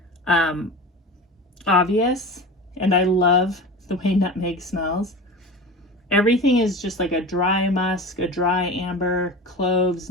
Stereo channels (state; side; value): normal; both; correlation 0.31